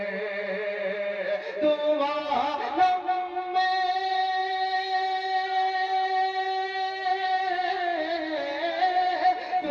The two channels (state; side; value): identical; both; correlation 1.00